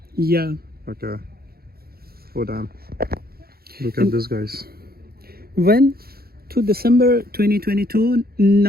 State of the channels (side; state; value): left; late; 0.44 ms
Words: Yeah. Okay. Oh, damn. Look at this, guys. When to December 2022,